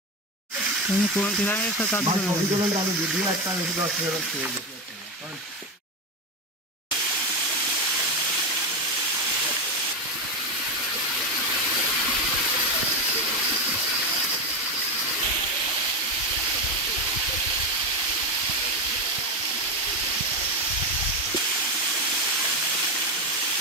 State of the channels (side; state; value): both; normal; correlation 0.13